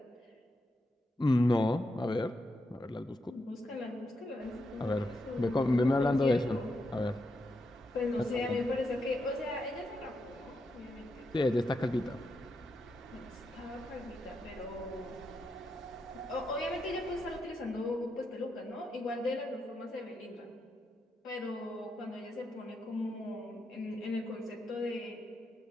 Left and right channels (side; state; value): both; normal; correlation 0.84